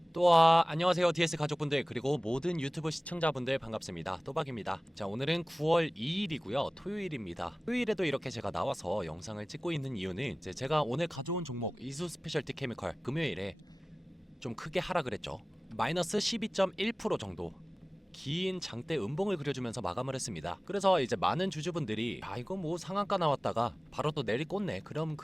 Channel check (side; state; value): both; normal; correlation 0.98